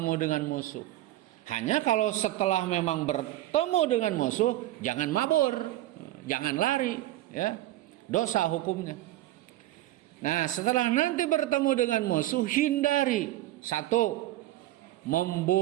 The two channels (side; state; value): left; quieter; 15.2 dB